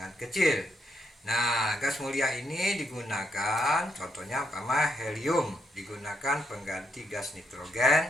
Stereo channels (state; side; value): normal; both; correlation 0.77